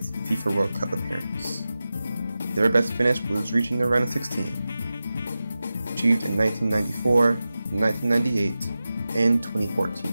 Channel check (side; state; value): both; inverted; correlation -0.94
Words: FIFA World Cup appearance. Their best finish was reaching the round of 16. Achieved in 1994, 1998, and 2014.